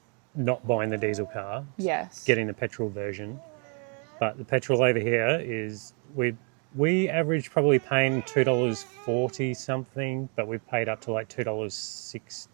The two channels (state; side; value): quieter; left; 37.6 dB